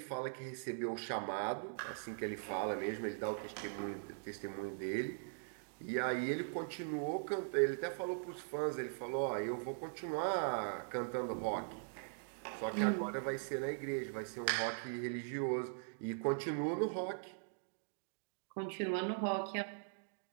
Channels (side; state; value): left; silent; digital silence